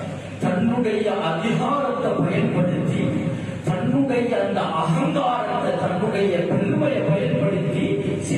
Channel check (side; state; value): both; identical; correlation 1.00